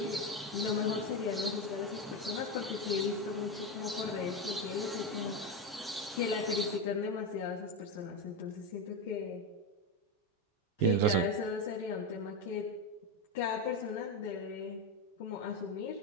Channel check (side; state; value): both; normal; correlation 0.13